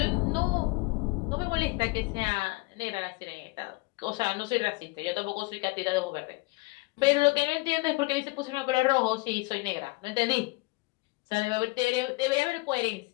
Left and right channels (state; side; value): quieter; right; 24.9 dB